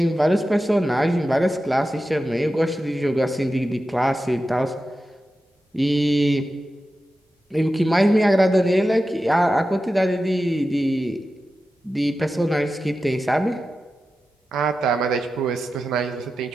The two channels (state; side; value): normal; both; correlation 0.92